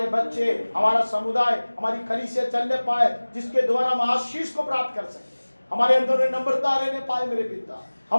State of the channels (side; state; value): both; inverted; correlation -1.00